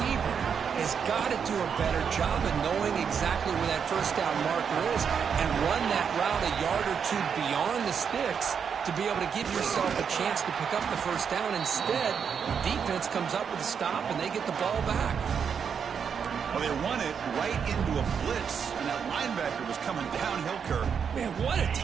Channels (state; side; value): quieter; left; 7.0 dB